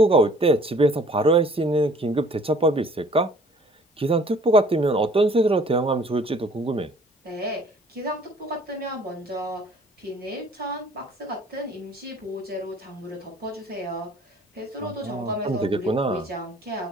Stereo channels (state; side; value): normal; both; correlation 0.54